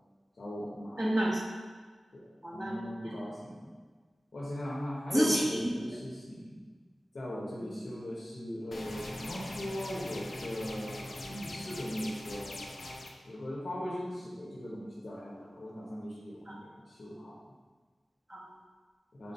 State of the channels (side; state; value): both; normal; correlation 0.96